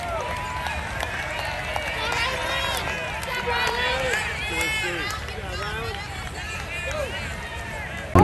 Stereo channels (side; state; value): both; identical; correlation 1.00